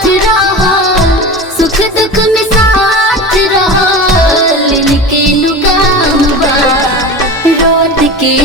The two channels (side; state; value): both; normal; correlation 0.30